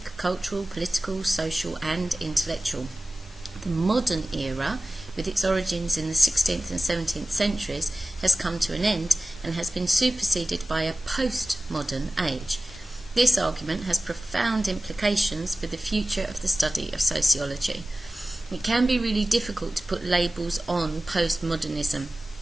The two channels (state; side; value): normal; both; correlation 0.96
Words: cultural, political, social and intellectual. The modern era, with its origins in the 16th and 17th centuries, has come to an end and has been superseded by a postmodern age. This argument has profound implications for the future of the study of sociology. It can be really difficult to put labels on postmodernism